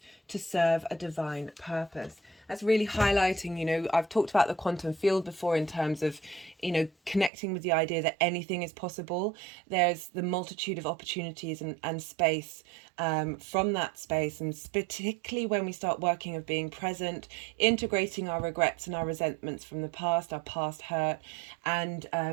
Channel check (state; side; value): drops out; left; at 7.3 s